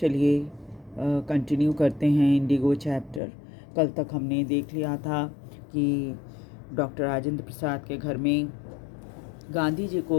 continue करते हैं इंडिगो चैप्टर। कल तक हमने देख लिया था कि डॉक्टर राजेंद्र प्रसाद के घर में गांधी जी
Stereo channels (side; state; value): right; drops out; at 3.2 s